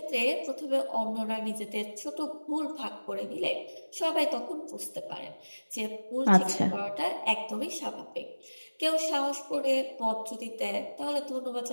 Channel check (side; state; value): both; inverted; correlation -1.00